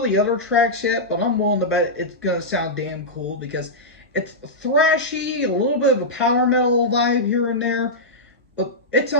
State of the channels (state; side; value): normal; both; correlation -0.10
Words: other tracks yet, but I'm willing to bet it's gonna sound damn cool because it's thrashy, a little bit of a power metal vibe here and there, but it